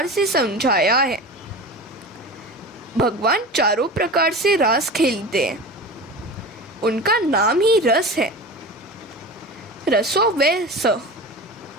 से समझाया है। भगवान चारों प्रकार से रास खेलते हैं। उनका नाम ही रस है। रसो वै स।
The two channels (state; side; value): normal; both; correlation 0.31